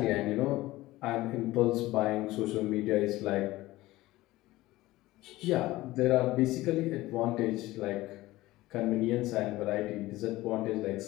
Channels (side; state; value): right; quieter; 18.0 dB